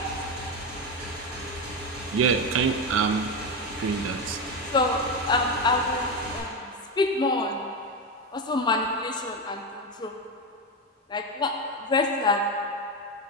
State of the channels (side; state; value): both; normal; correlation 0.13